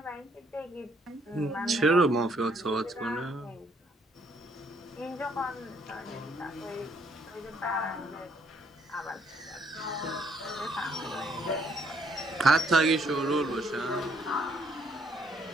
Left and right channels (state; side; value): normal; both; correlation 0.68